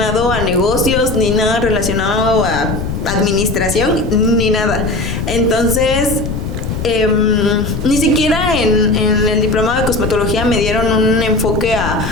a negocios, ni nada relacionado a administración, ni nada. Entonces, ni siquiera en el diplomado de cosmetología me dieron un enfoque a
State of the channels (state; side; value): noise; left; rumble, 5 dB below the sound